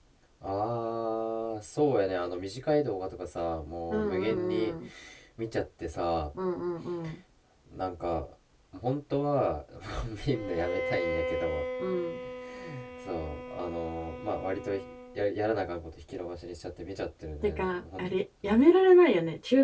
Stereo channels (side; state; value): both; identical; correlation 1.00